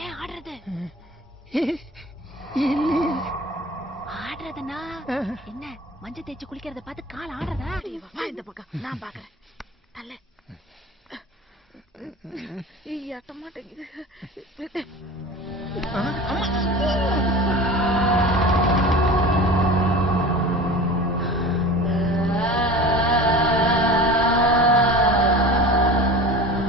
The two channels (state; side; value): normal; both; correlation 0.36